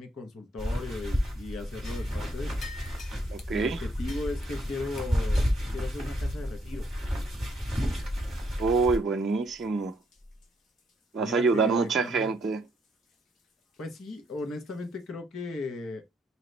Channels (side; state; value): both; normal; correlation 0.73